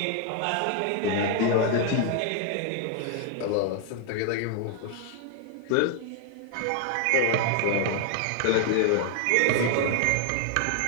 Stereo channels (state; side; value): different; both; correlation 0.00